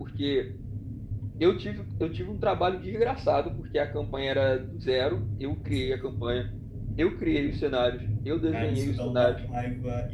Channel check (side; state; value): both; identical; correlation 1.00